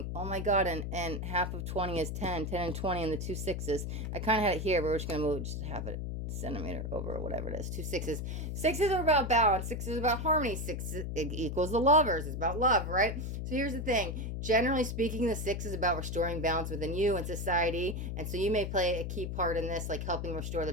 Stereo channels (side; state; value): left; noise; hum, 4 dB below the sound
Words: Oh my God. And half of 20 is 10. 10 and 20 and the 2 6s. I kind of had it here, but we're just going to move just half it centimeter over or whatever it is. 2 6s. 6s are about balance. 6 is about harmony. 6 equals the lovers. It's about love, right? So here's the thing. Generally speaking, the 6 is about restoring balance within you and society. And so you may play a key part in this, like helping restore the